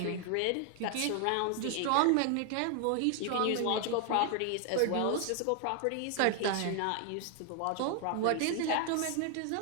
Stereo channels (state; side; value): different; both; correlation 0.00